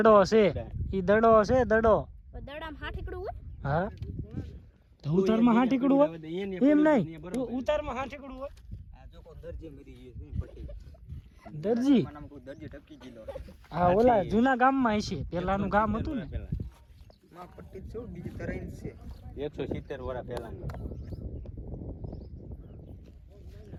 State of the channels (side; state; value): both; identical; correlation 1.00